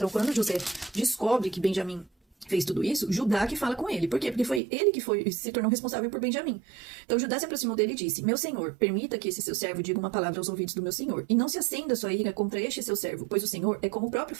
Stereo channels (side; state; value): left; drops out; at 4.6 s